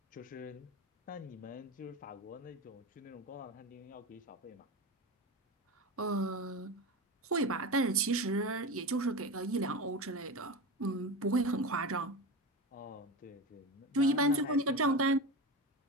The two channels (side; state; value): both; normal; correlation 0.23